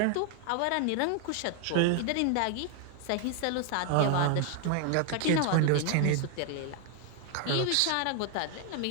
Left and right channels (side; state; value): both; different; correlation 0.00